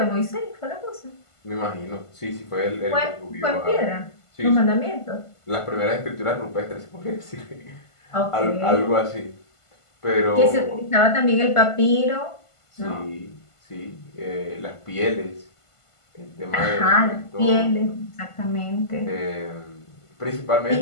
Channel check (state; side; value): late; right; 1.5 ms